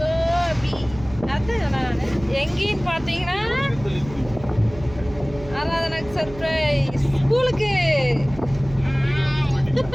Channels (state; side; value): noise; right; hum, 16 dB below the sound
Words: அதுதான் நான் எங்கேன்னு பார்த்தீங்கன்னா ஆராதனாக்கு சர்ப்ரைஸ். ஸ்கூலுக்கு